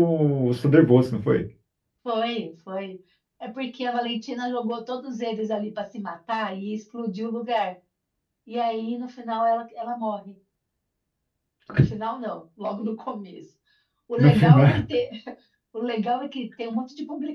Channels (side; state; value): both; identical; correlation 1.00